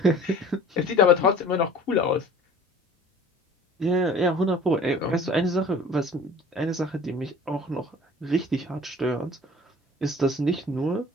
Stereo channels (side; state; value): both; normal; correlation 0.45